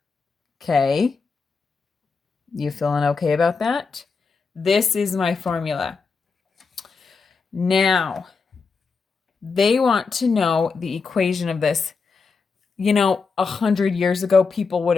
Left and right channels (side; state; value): right; quieter; 4.9 dB